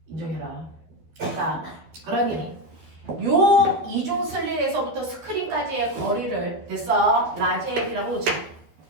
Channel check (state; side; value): late; left; 12 ms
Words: 인정해라. 자, 그러니 요 이중 슬릿에서부터 스크린까지의 거리를 됐어? 라지 L이라고 놓자.